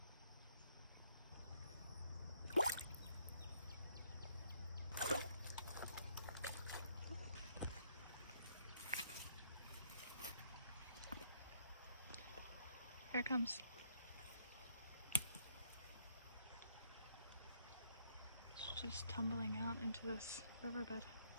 Here it comes. It's just tumbling out into this riverbed.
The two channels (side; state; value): both; inverted; correlation -0.68